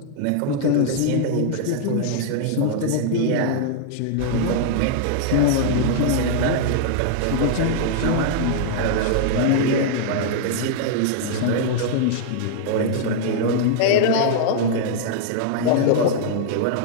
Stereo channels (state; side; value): different; both; correlation -0.01